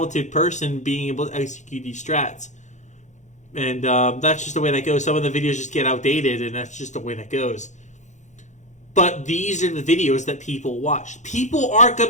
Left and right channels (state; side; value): late; right; 0.35 ms